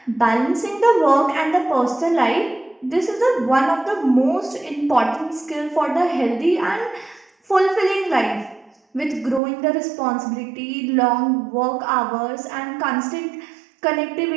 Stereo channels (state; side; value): drops out; left; at 9.4 s